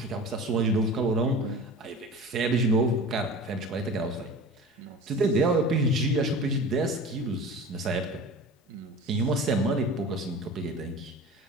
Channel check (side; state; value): both; normal; correlation 0.36